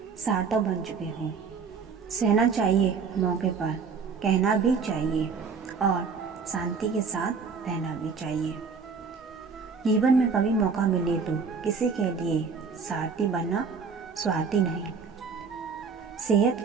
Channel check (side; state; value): left; quieter; 5.5 dB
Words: सार्थक बन चुके हो। सहना चाहिए मौके पर, कहना भी चाहिए और शांति के साथ रहना भी चाहिए। जीवन में कभी मौका मिले तो किसी के लिए सारथी बनना, स्वार्थी नहीं। सेहत